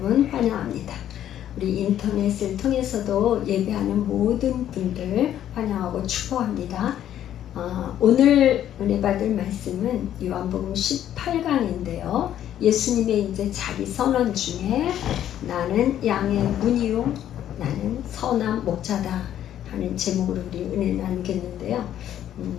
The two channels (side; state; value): right; quieter; 11.1 dB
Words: 환영합니다. 우리 인터넷을 통해서도 예배하는 모든 분들 환영하고 축복합니다. 오늘 은혜 받을 말씀은 요한복음 18강인데요. 예수님의 이제 자기 선언 중에 나는 양의 문이요 나는 선한 목자다 하는 제목으로 우리 은혜 나누겠는데요.